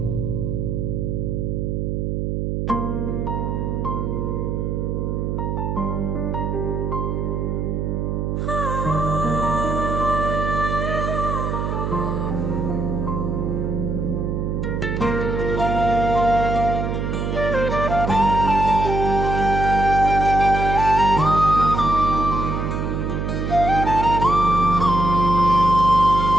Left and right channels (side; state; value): right; noise; hum, 1 dB below the sound